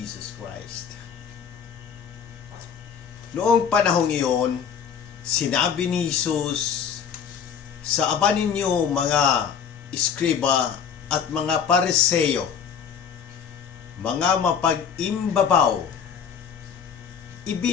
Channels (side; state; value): right; quieter; 7.3 dB